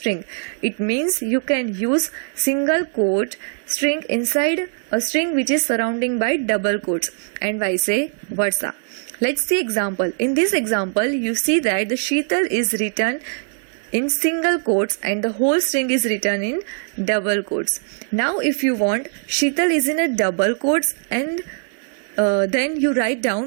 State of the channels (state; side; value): silent; left; 57 dB below the other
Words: It means you can use single quote string inside a string which is surrounding by double quotes and vice versa. Let's see example. In this example, you see that the Sheetal is written in single quotes and the whole string is written in double quotes. Now if you want Sheetal is in a double quotes and then you write